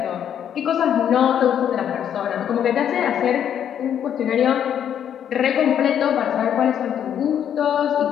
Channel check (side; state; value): right; quieter; 9.3 dB